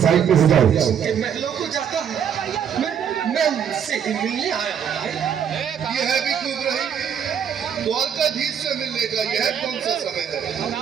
साइड पे हो जाओ। कि महलों को जाता है। मैं उनसे ही मिलने आया हूँ भाई। यह भी खूब रही। द्वारकाधीश से मिलने का यह कौन सा समय है?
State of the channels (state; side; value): quieter; left; 8.2 dB